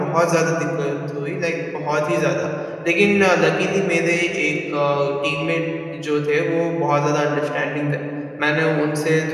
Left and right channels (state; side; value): identical; both; correlation 1.00